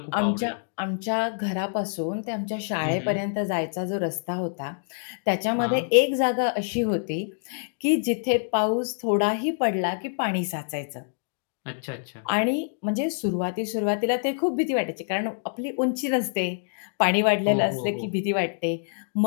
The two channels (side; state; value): right; silent; digital silence